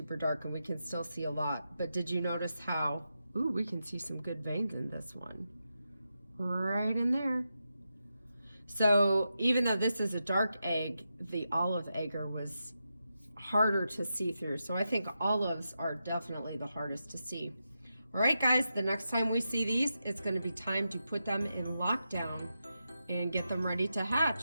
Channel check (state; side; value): inverted; both; correlation -0.88